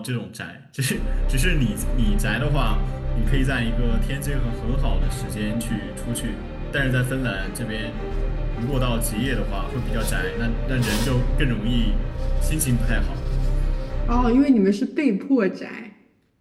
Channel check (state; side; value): identical; both; correlation 1.00